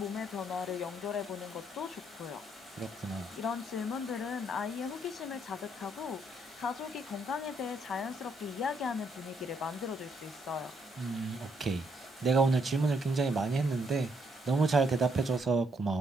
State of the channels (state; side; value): normal; both; correlation 0.73